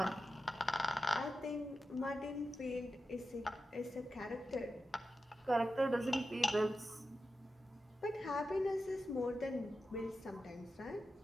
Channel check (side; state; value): both; normal; correlation 0.91